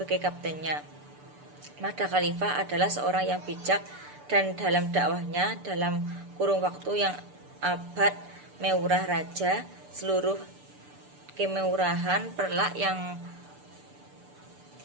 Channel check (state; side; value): late; left; 6.8 ms